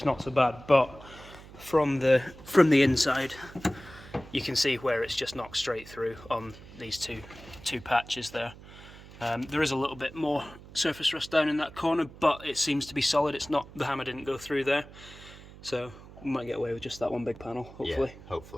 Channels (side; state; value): right; noise; hum, 18 dB below the sound